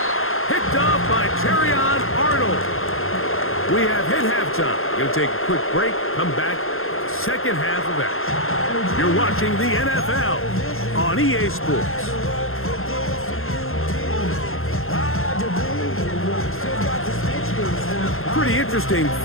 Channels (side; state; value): right; late; 0.61 ms